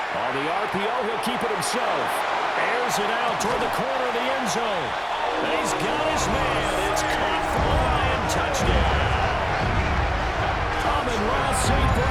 On the RPO, he'll keep it himself. Airs it out toward the corner of the end zone. And he's got his man. It's caught for a Lion touchdown. Amon-Ra St.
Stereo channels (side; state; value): both; identical; correlation 1.00